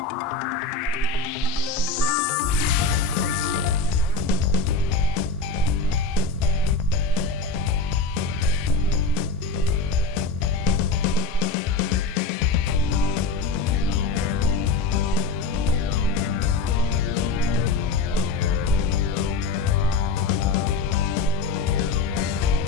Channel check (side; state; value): right; quieter; 4.0 dB